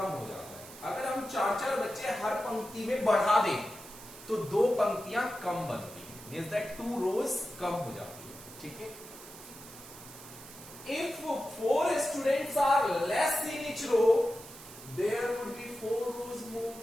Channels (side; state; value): right; noise; hiss, 16 dB below the sound